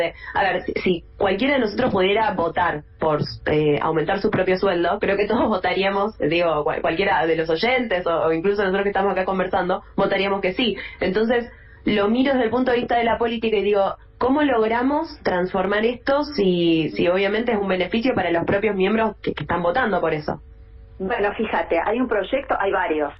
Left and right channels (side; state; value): both; identical; correlation 1.00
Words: a ver, si cualquiera de nosotros pudiera votar por aumentar su propio sueldo, creo que todos votaríamos, digo, cualquiera de los oyentes o incluso nosotros que estamos acá conversando, votaríamos que sí. Entonces, lo miro desde el punto de vista de la política y digo, ¿cómo logramos transformar esto si obviamente es un beneficio para los propios miembros que están votando por eso? Bueno, fíjate, hay un proyecto, hay varios,